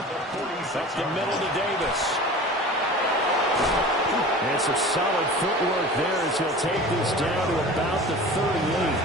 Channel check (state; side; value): normal; both; correlation 0.38